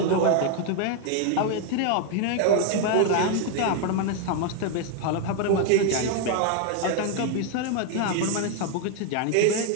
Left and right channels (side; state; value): both; different; correlation 0.00